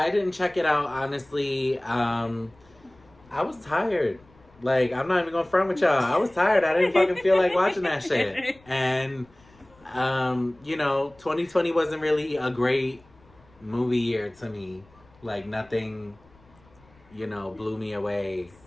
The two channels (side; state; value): left; noise; rumble, 29 dB below the sound